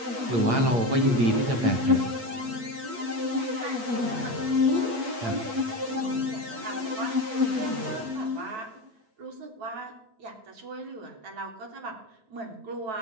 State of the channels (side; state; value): left; late; 8.3 ms